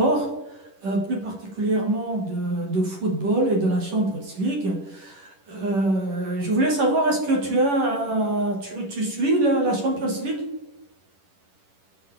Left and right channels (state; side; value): late; left; 10 ms